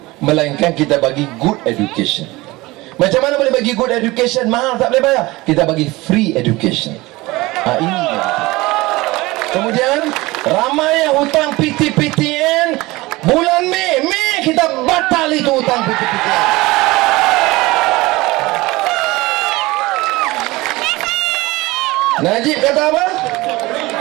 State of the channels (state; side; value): quieter; left; 20.9 dB